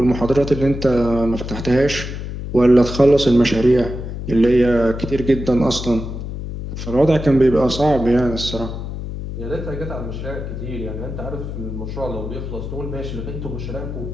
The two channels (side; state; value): left; noise; hum, 7 dB below the sound